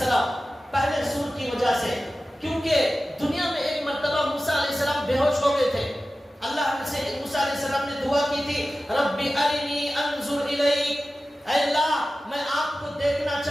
پہلے سور کی وجہ سے, کیونکہ دنیا میں ایک مرتبہ موسیٰ علیہ السلام بے ہوش ہو گئے تھے. اللہ سے موسیٰ علیہ السلام نے دعا کی تھی ربی ارنی انظر الیک, اے اللہ میں آپ کو دیکھنا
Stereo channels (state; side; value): normal; both; correlation 0.95